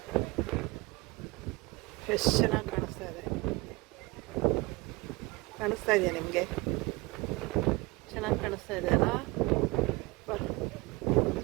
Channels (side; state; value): left; quieter; 23.3 dB